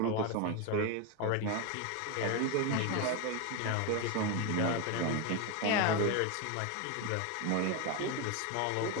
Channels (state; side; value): different; both; correlation 0.02